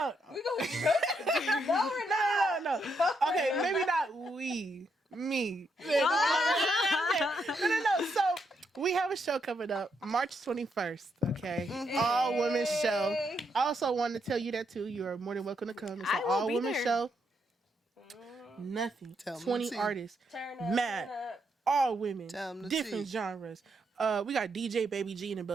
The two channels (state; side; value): normal; both; correlation 0.78